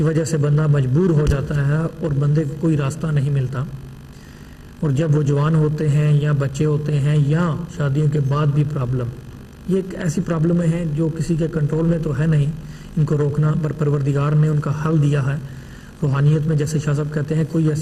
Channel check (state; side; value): identical; both; correlation 1.00